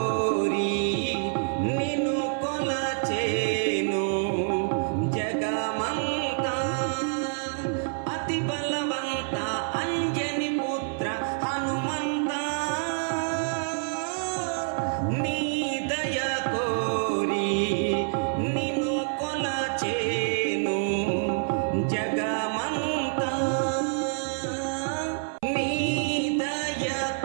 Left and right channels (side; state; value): left; silent; 60 dB below the other